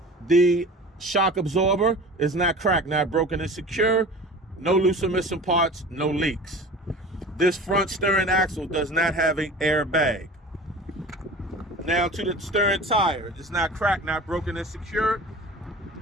The shock absorber is not cracked, not broken and secure. No loose or missing parts, no leaks. This front steering axle does not have an airbag. Now to the steering tire, it's not cracked, not broken and secure,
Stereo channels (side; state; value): both; normal; correlation 0.39